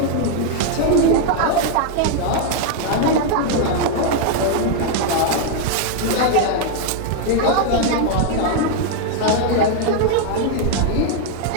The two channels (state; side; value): different; both; correlation 0.00